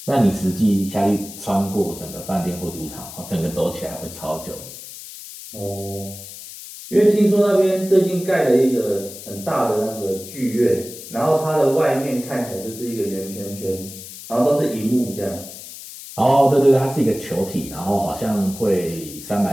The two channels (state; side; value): noise; left; hiss, 14 dB below the sound